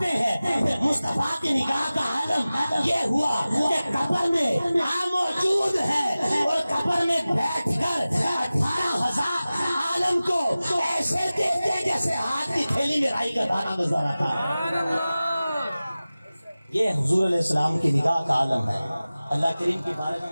ہیں کہ مصطفیٰ کی نگاہ کا عالم یہ ہوا کہ قبر میں موجود ہے اور قبر میں بیٹھ کر 18,000 عالم کو ایسے دیکھتے جیسے ہاتھ کی تھیلی میں رائی کا دانہ گزارا تھا۔ یہ حضور علیہ السلام کی نگاہ کا عالم ہے۔ اللہ کریم کی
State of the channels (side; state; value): both; inverted; correlation -0.97